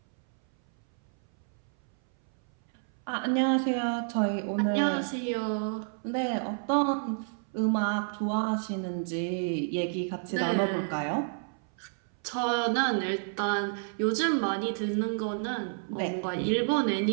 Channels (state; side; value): silent; left; 58 dB below the other